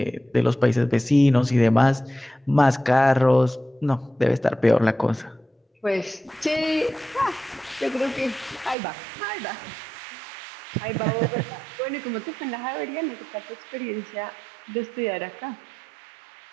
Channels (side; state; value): left; drops out; at 8.8 s